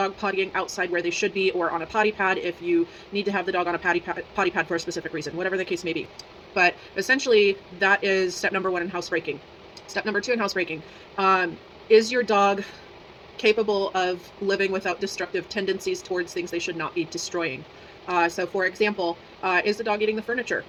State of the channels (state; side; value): identical; both; correlation 1.00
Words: pottying outside where they should be or on a potty pad if you need to have the dog on a potty pad for a specific reason, whatever the case may be. But essentially, that is step number one in housebreaking. Step number two in housebreaking, is your dog capable of living without destructive tendencies towards things they should not be destroying? So for example, is the dog eating the furniture?